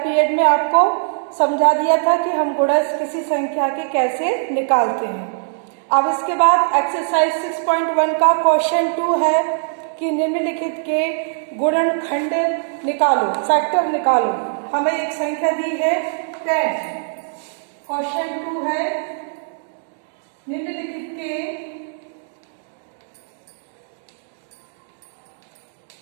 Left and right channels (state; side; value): silent; left; digital silence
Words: में आपको समझा दिया था कि हम गुणज किसी संख्या के कैसे निकालते हैं। अब इसके बाद एक्सरसाइज 6.1 का क्वेश्चन 2 है कि निम्नलिखित के गुणनखंड निकालो, फैक्टर निकालो। हमें एक संख्या दी है 10। क्वेश्चन 2 है निम्नलिखित के